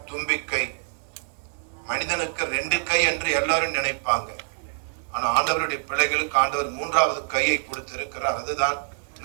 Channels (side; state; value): left; silent; 59 dB below the other